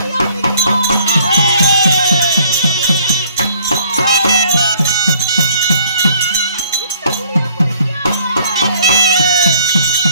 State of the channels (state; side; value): inverted; both; correlation -0.59